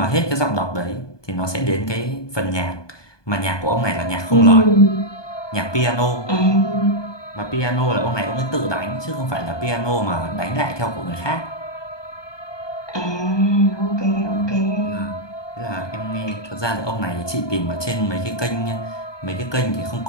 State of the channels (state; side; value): late; right; 1.2 ms